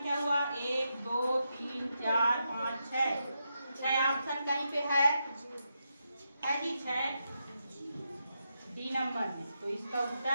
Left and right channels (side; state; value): both; inverted; correlation -0.84